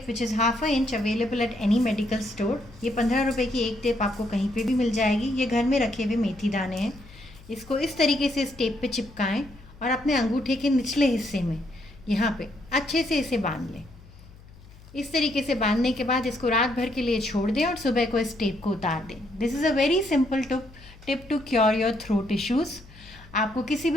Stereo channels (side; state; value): left; noise; hum, 22 dB below the sound